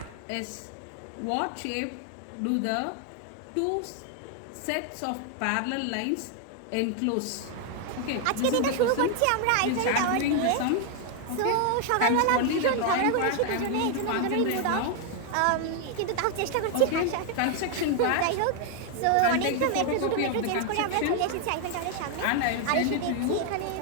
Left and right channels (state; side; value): different; both; correlation 0.00